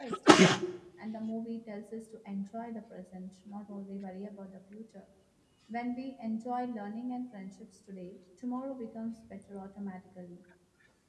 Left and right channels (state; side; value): identical; both; correlation 1.00